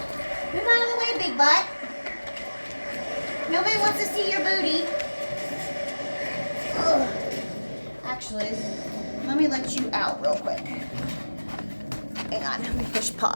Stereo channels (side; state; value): both; inverted; correlation -1.00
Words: Move out of the way, big butt. Nobody wants to see your booty. Ugh. Actually, let me let you out real quick. Hang on, let me push